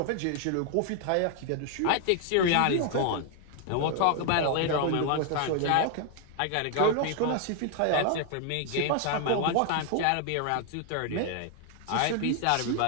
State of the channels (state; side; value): different; both; correlation 0.00